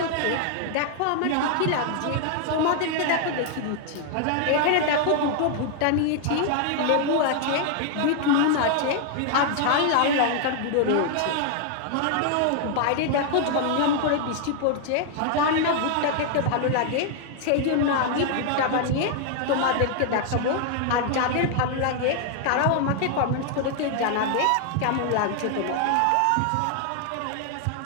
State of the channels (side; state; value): both; different; correlation 0.00